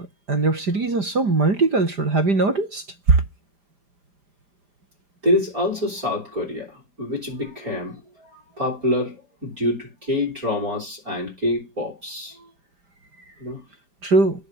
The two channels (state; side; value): late; left; 5.0 ms